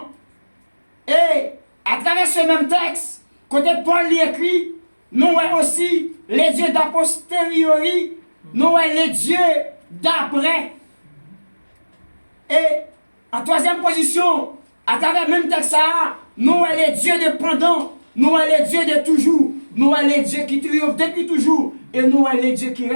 Et à travers ce même texte, côté Paul l'écrit, nous aussi les dieux d'a posteriori, nous les dieux d'après. Et en troisième position, à travers le même texte, nous les dieux de pendant, nous les dieux de toujours, nous les dieux qui triomphent depuis toujours, et nous les dieux qui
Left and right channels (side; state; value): both; inverted; correlation -1.00